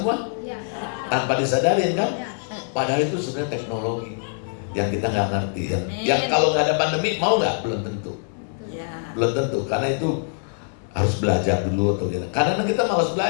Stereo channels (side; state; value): right; silent; digital silence